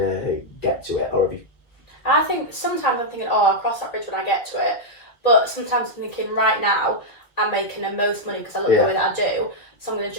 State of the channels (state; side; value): late; right; 2.1 ms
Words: get to it, or have you? I think sometimes I'm thinking, oh, I'll cross that bridge when I get to it, but sometimes I'm thinking, right now, I'm making the most money because I look the way that I do, so I'm going to